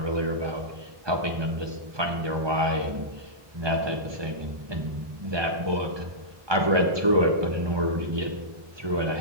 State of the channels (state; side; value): late; left; 1.2 ms